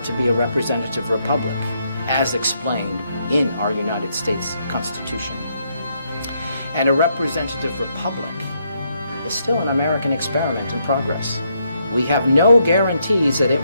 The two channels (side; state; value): both; inverted; correlation -0.75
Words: to be a representative republic, as explained in our United States Constitution. And a representative republic is still an American experiment in progress. We have no guarantees that it